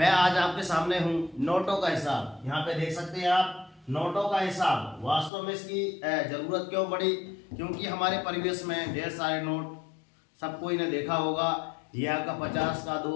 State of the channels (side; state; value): right; drops out; at 5.3 s